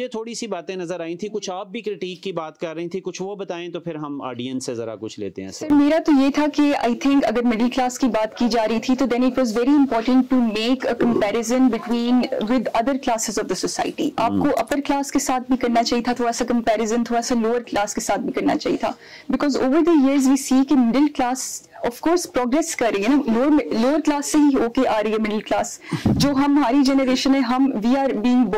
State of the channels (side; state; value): both; identical; correlation 1.00